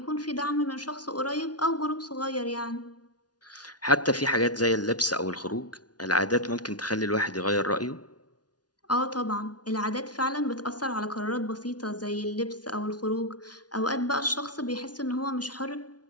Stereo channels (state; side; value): late; right; 0.69 ms